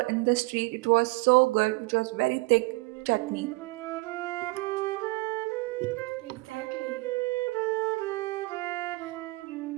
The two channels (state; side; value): quieter; left; 23.6 dB